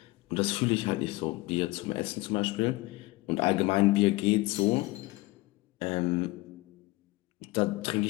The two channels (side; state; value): right; quieter; 21.5 dB